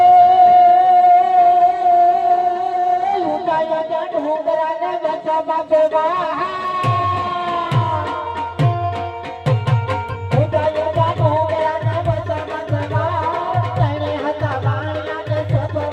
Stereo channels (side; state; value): both; identical; correlation 1.00